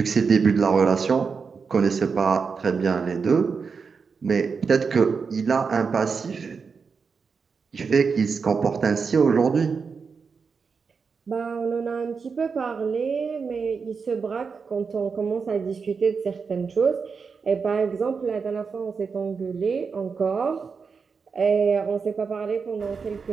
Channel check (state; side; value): quieter; left; 5.4 dB